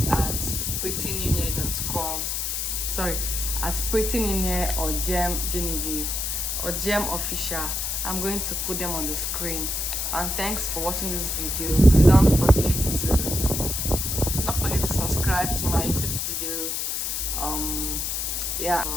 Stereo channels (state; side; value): noise; left; hiss, 1 dB below the sound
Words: at prettyninye.com. Sorry, at prettyninye or Genevieve or Gem Official. I'm going to put them on the screen. And thanks for watching this video. Please don't forget to subscribe to my YouTube video. Yeah.